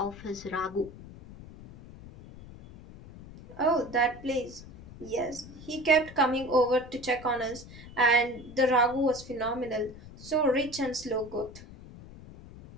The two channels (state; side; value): noise; left; rumble, 17 dB below the sound